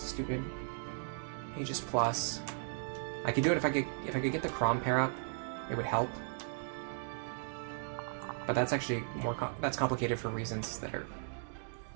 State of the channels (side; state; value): left; silent; digital silence